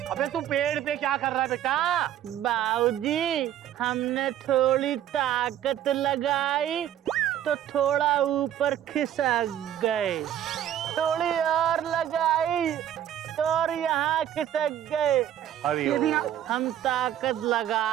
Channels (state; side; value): quieter; left; 11.0 dB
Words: अबे तू पेड़ पे क्या कर रहा है बेटा? बाबूजी हमने थोड़ी ताकत लगाई तो थोड़ा ऊपर खिसक गए, थोड़ी और लगाई तो और यहाँ खिसक गए। अरे हम ताकत